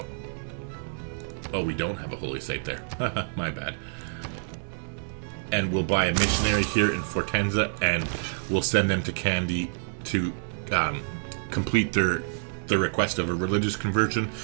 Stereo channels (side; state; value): left; silent; digital silence